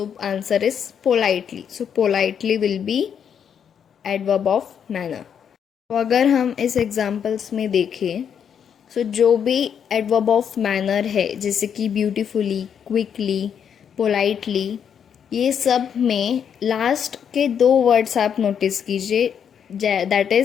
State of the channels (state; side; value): quieter; right; 8.0 dB